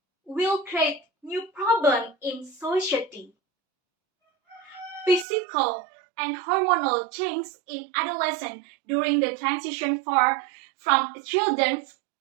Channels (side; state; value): left; drops out; at 5.2 s